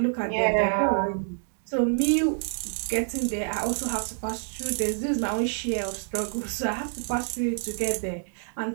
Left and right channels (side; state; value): left; silent; digital silence